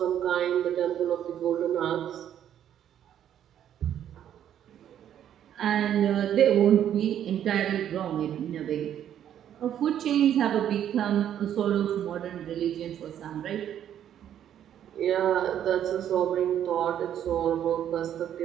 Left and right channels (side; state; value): left; quieter; 10.2 dB